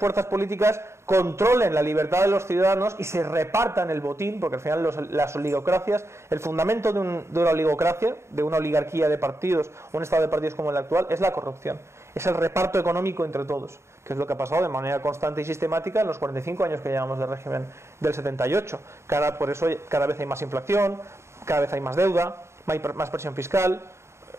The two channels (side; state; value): left; late; 0.13 ms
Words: políticas controlen la libertad de los ciudadanos y se repartan el botín, porque al final las oligocracias, el fundamento de una oligocracia, de una oligarquía de partidos, un estado de partidos como el actual, es la corrupción. Es el reparto económico entre todos, que es lo que ha pasado de manera constante y sistemática en los 45 años que llevamos de régimen del 78. Por eso cada vez hay más inflación, cada vez hay más deuda, más presión fiscal,